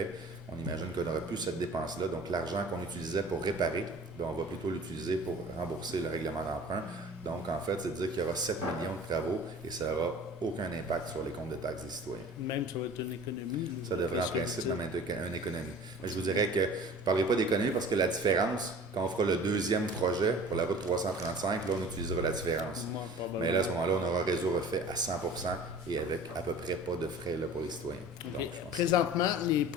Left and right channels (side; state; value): both; normal; correlation 0.43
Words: on imagine qu'on n'aura plus cette dépense-là. Donc, l'argent qu'on utilisait pour réparer, on va plutôt l'utiliser pour rembourser le règlement d'emprunt. Donc, en fait, c'est-à-dire qu'il y aura 7 millions de travaux et ça n'aura aucun impact sur les comptes de taxes des citoyens. Même ça va être une économie. Ça devrait en principe même être une économie. Mais je vous dirais que je ne parlerai pas d'économie parce que la différence, quand on fera le deuxième projet pour la route 335, là, on utilisera la différence. Mais là, à ce moment-là, on aura un réseau refait à 100% et avec à peu près pas de frais là, pour les citoyens. Okay. Donc, présentement, les